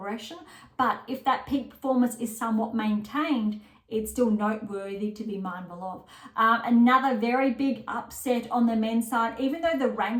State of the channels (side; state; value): both; identical; correlation 1.00